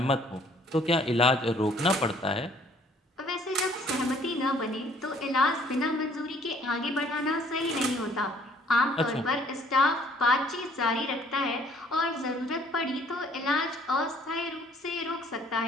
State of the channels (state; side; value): normal; both; correlation 0.59